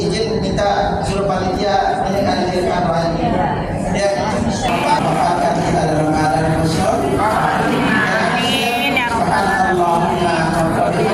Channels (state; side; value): identical; both; correlation 1.00